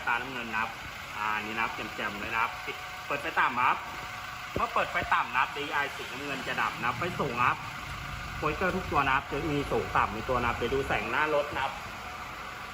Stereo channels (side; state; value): both; identical; correlation 1.00